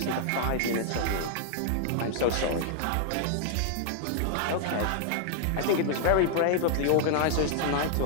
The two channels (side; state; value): both; different; correlation 0.00